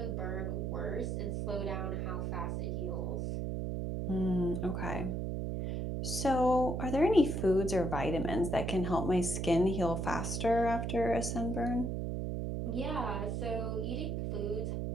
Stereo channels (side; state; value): right; noise; hum, 1 dB below the sound